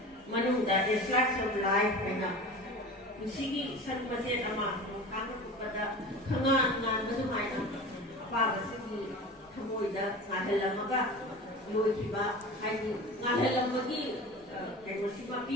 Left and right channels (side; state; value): both; normal; correlation 0.34